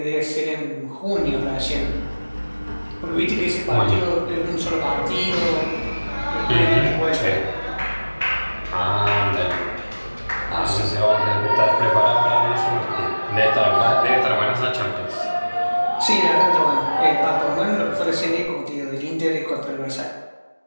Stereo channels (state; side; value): inverted; both; correlation -1.00